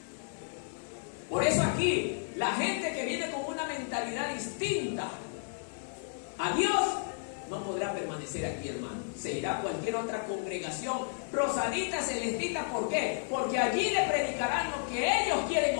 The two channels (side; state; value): right; silent; digital silence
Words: Por eso aquí, la gente que viene con una mentalidad distinta a Dios no podrá permanecer aquí, hermano. Se irá a cualquier otra congregación, rosadita, celestita. ¿Por qué? Porque allí le predicarán lo que ellos quieren